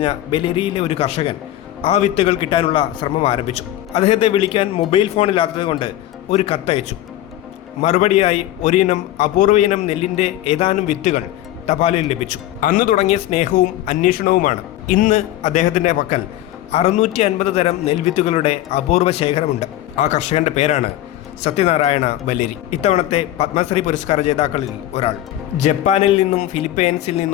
ബല്ലേരിയിലെ ഒരു കർഷകൻ ആ വിത്തുകൾ കിട്ടാനുള്ള ശ്രമം ആരംഭിച്ചു. അദ്ദേഹത്തെ വിളിക്കാൻ മൊബൈൽ ഫോണില്ലാത്തതുകൊണ്ട് ഒരു കത്തയച്ചു. മറുപടിയായി ഒരിനം അപൂർവ ഇനം നെല്ലിൻ്റെ ഏതാനും വിത്തുകൾ തപാലിൽ ലഭിച്ചു. അന്ന് തുടങ്ങിയ സ്നേഹവും അന്വേഷണവുമാണ്. ഇന്ന് അദ്ദേഹത്തിൻ്റെ പക്കൽ 650 തരം നെൽവിത്തുകളുടെ അപൂർവ ശേഖരമുണ്ട്. ആ കർഷകന്റെ പേരാണ് സത്യനാരായണ ബല്ലേരി. ഇത്തവണത്തെ പത്മശ്രീ പുരസ്കാര ജേതാക്കളിൽ ഒരാൾ. ജപ്പാനിൽ നിന്നും ഫിലിപ്പൈൻസിൽ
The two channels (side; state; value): right; quieter; 13.7 dB